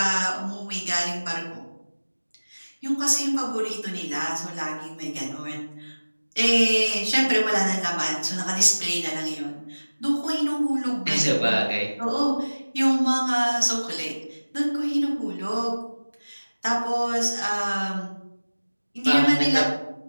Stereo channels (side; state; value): both; inverted; correlation -1.00